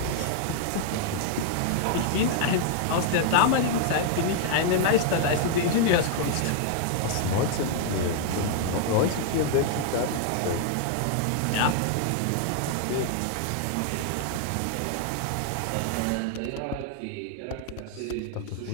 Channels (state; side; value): different; both; correlation 0.00